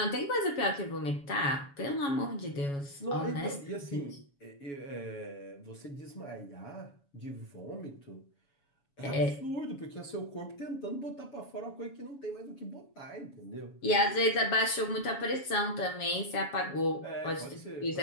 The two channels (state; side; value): late; right; 7.1 ms